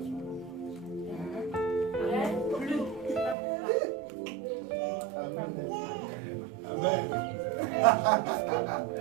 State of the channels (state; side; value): drops out; left; at 3.4 s